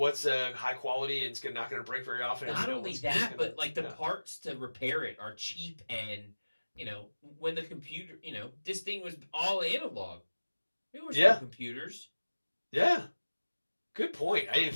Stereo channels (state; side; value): inverted; both; correlation -1.00